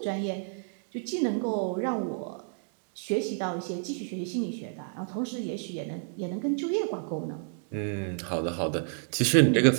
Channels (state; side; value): silent; left; digital silence